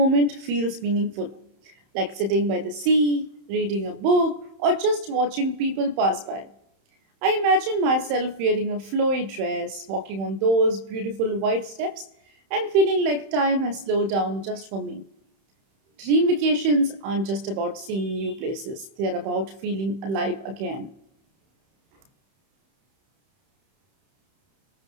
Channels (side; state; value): left; late; 31 ms